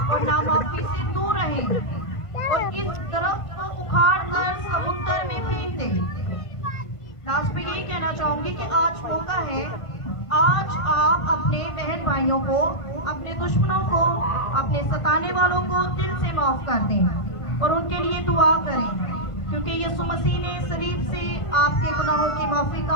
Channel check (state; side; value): late; right; 1.5 ms